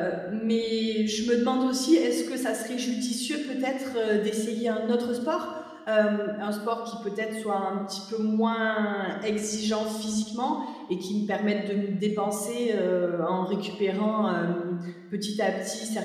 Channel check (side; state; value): both; identical; correlation 1.00